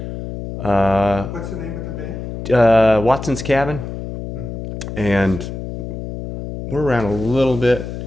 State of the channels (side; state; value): left; noise; hum, 8 dB below the sound